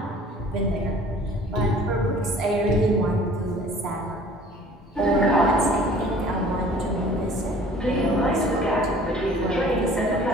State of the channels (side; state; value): both; normal; correlation 0.50